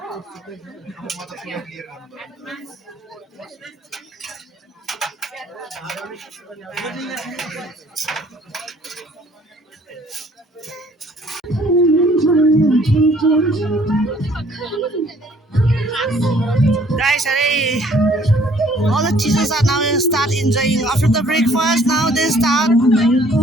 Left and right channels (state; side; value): normal; both; correlation 0.59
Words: Guys, all the teachers are now start enjoying after the breakfast. Now they start